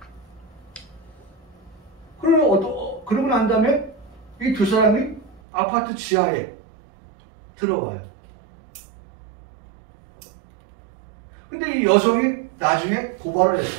그러고 난 다음에 이 두 사람이 아파트 지하에 들어와요. 근데 이 여성이 나중에 고발을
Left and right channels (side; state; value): left; drops out; at 5.4 s